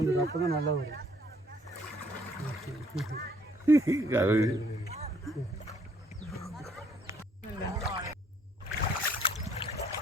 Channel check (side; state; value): both; normal; correlation 0.64